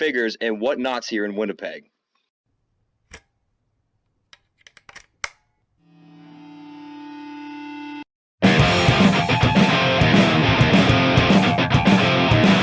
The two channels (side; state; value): both; identical; correlation 1.00